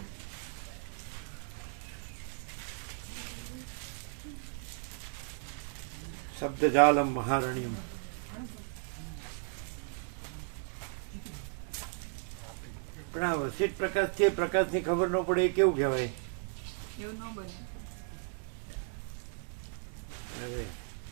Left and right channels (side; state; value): left; silent; 54 dB below the other